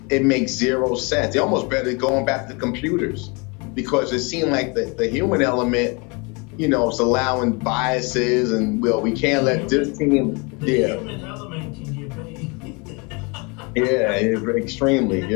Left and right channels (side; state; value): right; quieter; 30.3 dB